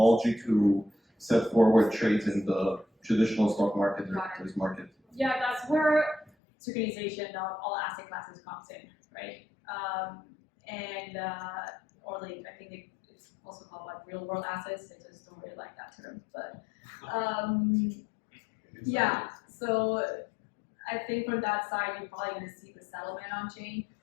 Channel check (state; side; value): drops out; right; at 6.3 s